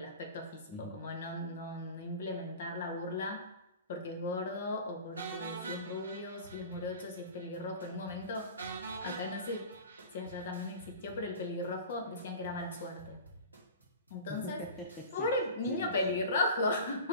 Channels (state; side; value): inverted; both; correlation -0.37